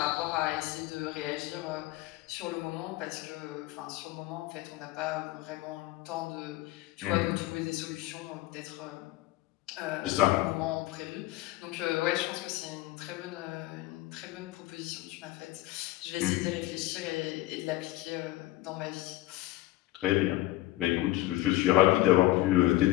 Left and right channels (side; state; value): right; quieter; 17.2 dB